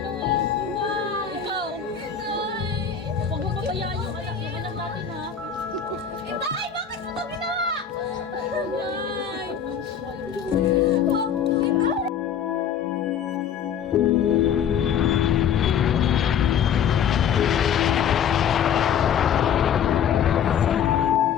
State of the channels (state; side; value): quieter; right; 8.0 dB